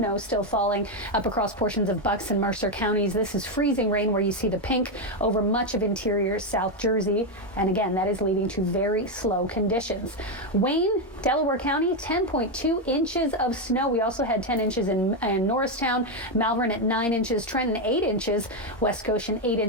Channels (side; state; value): both; normal; correlation 0.06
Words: still falling up across portions of Bucks and Mercer counties. This is freezing rain where you see the pink over much of interior South Jersey. And again, that is leading to very slow conditions. Wayne, Delaware County, 10.2 inches of snow. We also had 10 inches in Norristown, Malvern at 9 inches, Trenton 8 inches, West Goshen 8